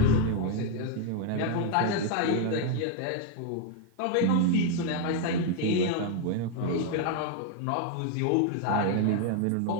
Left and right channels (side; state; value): both; different; correlation 0.00